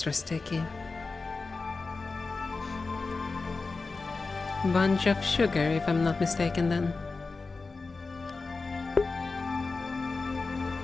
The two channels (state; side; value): quieter; right; 4.0 dB